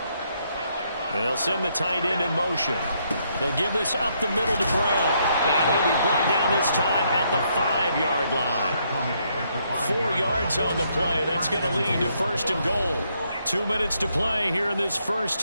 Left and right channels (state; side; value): inverted; both; correlation -0.74